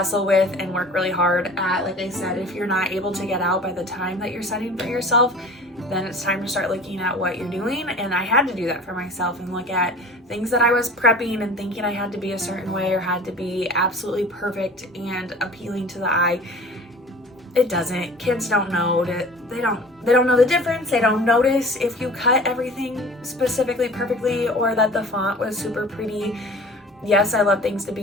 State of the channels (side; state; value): both; normal; correlation 0.43